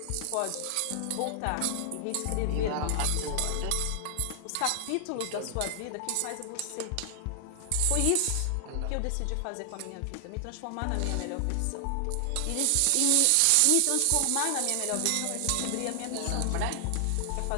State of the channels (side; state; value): both; different; correlation 0.00